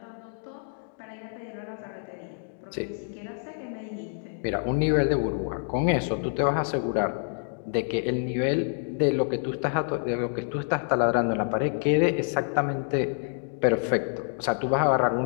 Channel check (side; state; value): right; silent; 60 dB below the other